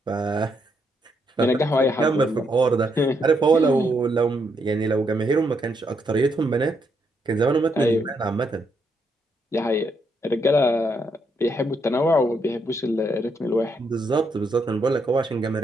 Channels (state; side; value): normal; both; correlation 0.77